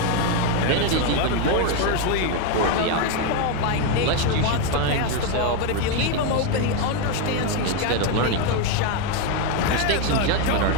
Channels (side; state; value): both; different; correlation 0.02